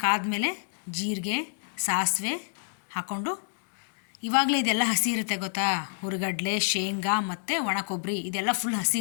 ಕಾದ್ಮೇಲೆ ಜೀರಿಗೆ, ಸಾಸಿವೆ ಹಾಕ್ಕೊಂಡು, ಇವಾಗಲೇ ಇದೆಲ್ಲ ಹಸಿ ಇರುತ್ತೆ ಗೊತ್ತಾ, ಹುರಿಗಡಲೆ, ಶೇಂಗಾ ಮತ್ತು ಒಣ ಕೊಬ್ಬರಿ ಇದೆಲ್ಲ ಫುಲ್ ಹಸಿ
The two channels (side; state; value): right; silent; digital silence